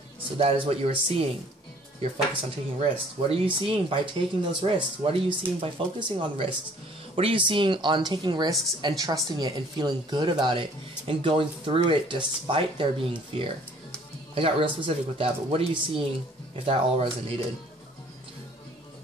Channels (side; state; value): both; normal; correlation 0.56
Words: So that is what you are seeing. You're focused on taking risks. What are you seeing by taking those risks? What are you seeing by focusing on risks? What are you seeing on taking risks and trusting it and feeling good about it and going through it despite there being fear? I got real specific with that, but what are you seeing if that all resonated?